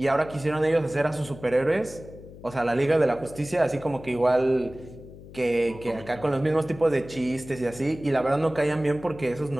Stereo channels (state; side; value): noise; left; hum, 17 dB below the sound